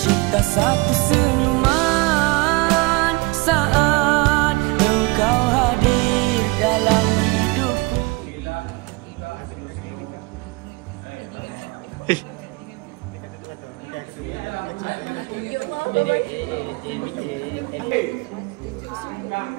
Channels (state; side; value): quieter; left; 25.4 dB